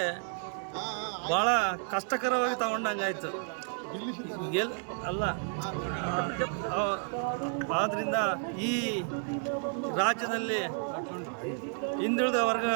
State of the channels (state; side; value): silent; left; 55 dB below the other